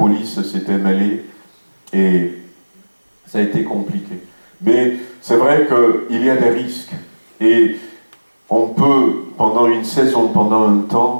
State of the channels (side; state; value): both; inverted; correlation -1.00